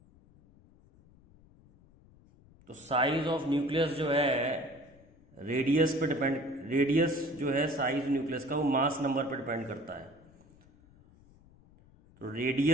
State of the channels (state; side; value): noise; left; rumble, 27 dB below the sound